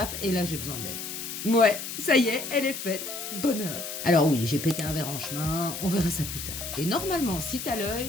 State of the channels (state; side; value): noise; left; hiss, 7 dB below the sound